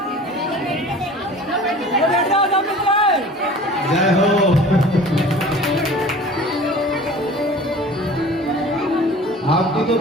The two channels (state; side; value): normal; both; correlation 0.43